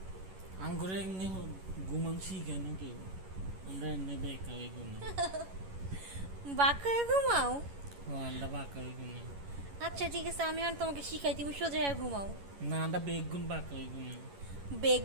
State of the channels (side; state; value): left; late; 11 ms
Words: আঙ্গুরে এমনি ঘুমানছি কেন কেউ? আমরা এমনি বেকা হয়ে ঘুমাই। বাঁকা হয়ে ঘুমাও? ও আমরা বাঁকা হয়ে ঘুমাই। আচ্ছা ঠিক আছে, আমি আর তোমাকে শিখাই, তুমি সোজা হয়ে ঘুমাও। না, আমরা বেগুন বাঁকা হয়ে ঘুমাই।